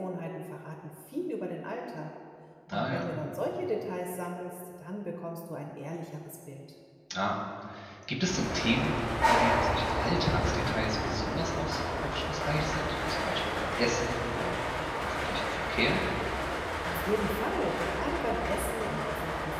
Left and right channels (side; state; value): both; identical; correlation 1.00